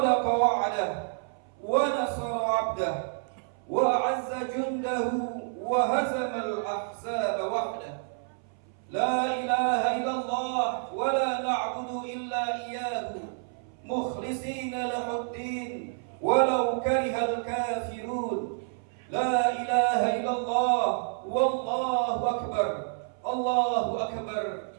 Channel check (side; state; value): left; silent; 59 dB below the other